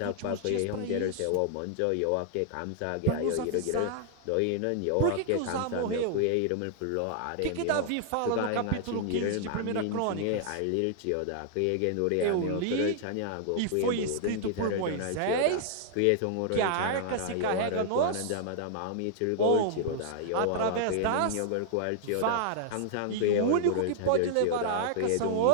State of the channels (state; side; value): different; both; correlation -0.01